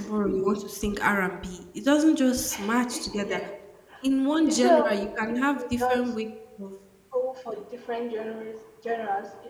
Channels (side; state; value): both; identical; correlation 1.00